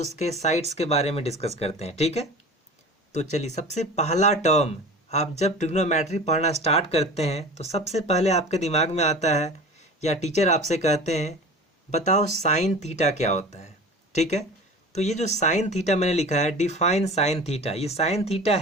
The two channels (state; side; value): normal; both; correlation 0.37